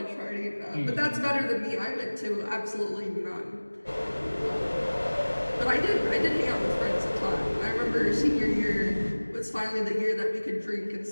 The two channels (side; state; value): both; inverted; correlation -1.00